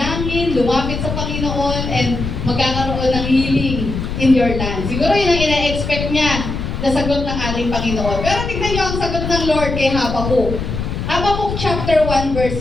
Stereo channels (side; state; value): left; noise; rumble, 4 dB below the sound